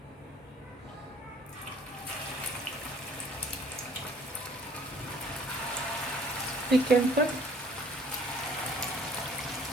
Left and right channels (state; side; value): normal; both; correlation 0.56